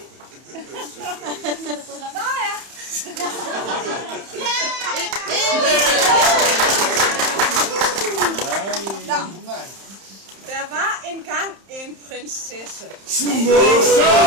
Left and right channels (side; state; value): left; late; 31 ms